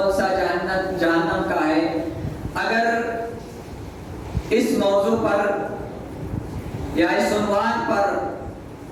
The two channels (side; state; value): both; identical; correlation 1.00